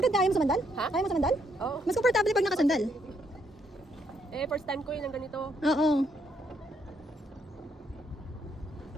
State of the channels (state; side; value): normal; both; correlation 0.73